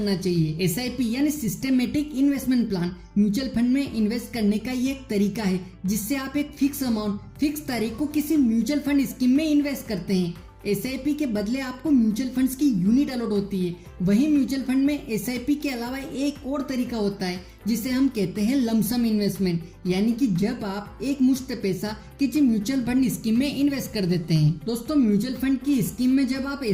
चाहिए। एसआईपी यानी systematic investment plan mutual fund में इन्वेस्ट करने का ये एक तरीका है जिससे आप एक फिक्स अमाउंट फिक्स तारीख को किसी म्यूचुअल फंड स्कीम में इन्वेस्ट करते हैं। एसआईपी के बदले आपको म्यूचुअल फंड्स की यूनिट अलॉट होती है। वहीं म्यूचुअल फंड में एसआईपी के अलावा एक और तरीका होता है जिसे हम कहते हैं लमसम इन्वेस्टमेंट, यानी कि जब आप एक मुश्त पैसा किसी म्यूचुअल फंड स्कीम में इन्वेस्ट कर देते हैं। दोस्तों, म्यूचुअल फंड की स्कीम में जब आप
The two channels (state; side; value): identical; both; correlation 1.00